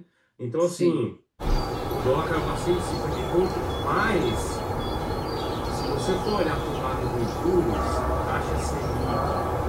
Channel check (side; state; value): both; identical; correlation 1.00